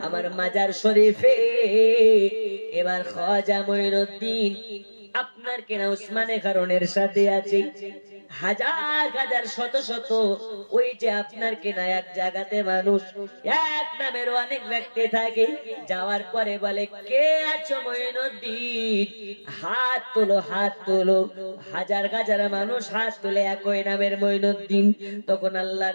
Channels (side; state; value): both; inverted; correlation -1.00